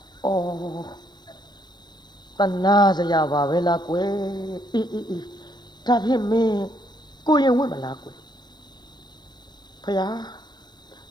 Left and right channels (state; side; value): late; right; 0.21 ms